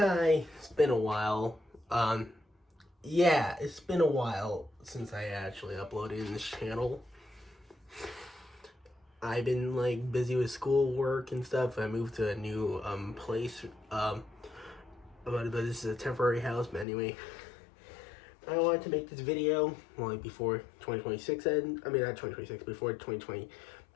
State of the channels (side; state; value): right; drops out; at 16.9 s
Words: it's been a while. Yeah, it's been a while since I actually uploaded in this channel. I've been busy with schoolwork and stuff. I moved to a new place. But this is a temporary house. But anyway, I wanted to make this video before 2026 ends. I mean, not 2026, before